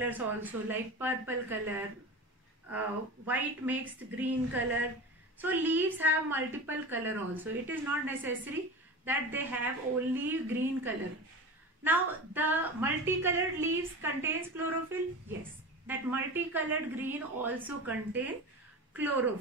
also, like purple color, white mixed green color. So leaves have multiple color also. It is not necessary that they have only green color. Now the multicolored leaves contains chlorophyll. Yes, that multicolored green also contain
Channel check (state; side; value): normal; both; correlation 0.29